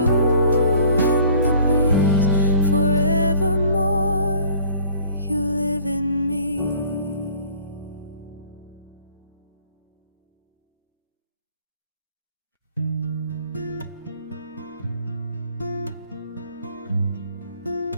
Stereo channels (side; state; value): both; inverted; correlation -0.53